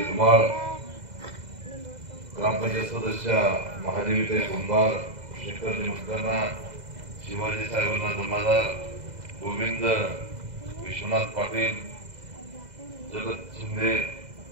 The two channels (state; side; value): late; left; 2.0 ms